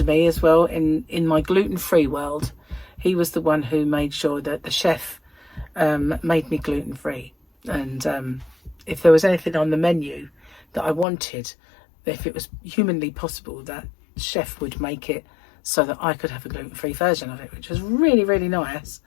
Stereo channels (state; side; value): drops out; right; at 11.1 s